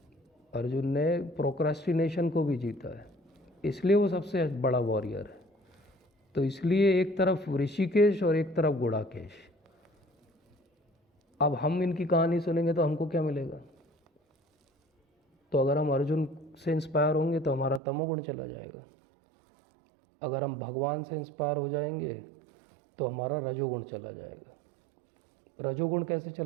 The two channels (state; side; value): drops out; left; at 17.8 s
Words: अर्जुन ने प्रोक्रेस्टिनेशन को भी जीता है, इसलिए वो सबसे बड़ा वॉरियर है। तो इसलिए एक तरफ ऋषिकेश और एक तरफ गुड़ाकेश। अब हम इनकी कहानी सुनेंगे तो हमको क्या मिलेगा? तो अगर हम अर्जुन से इंस्पायर होंगे तो हमारा तमोगुण चला जाएगा। अगर हम भगवान से इंस्पायर हो जाएंगे तो हमारा रजोगुण चला जाएगा। रजोगुण कैसे